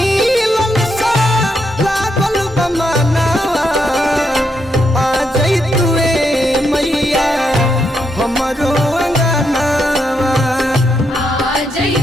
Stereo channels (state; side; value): normal; both; correlation 0.80